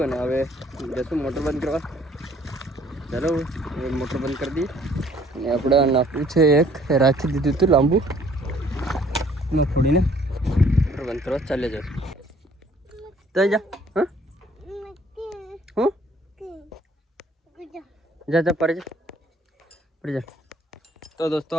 અને હવે જશું મોટર બંધ કરવા. ચાલો હવે મોટર બંધ કરી દઈએ. અને આપણે નાખવું છે એક રાખી દીધું હતું લાંબુ ન ફોડીને મોટર બંધ કરવા ચાલે જશું. તો જા હા હું જા પડી જા. તો દોસ્તો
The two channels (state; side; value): normal; both; correlation 0.58